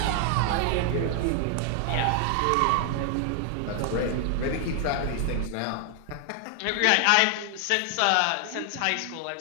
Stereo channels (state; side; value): different; both; correlation 0.00